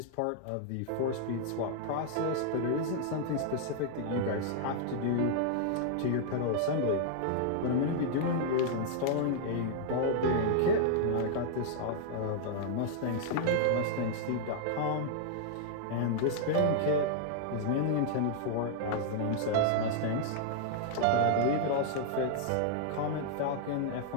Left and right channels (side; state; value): both; different; correlation -0.01